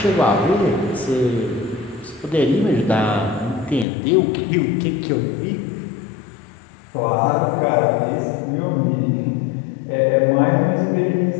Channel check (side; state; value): right; drops out; at 3.9 s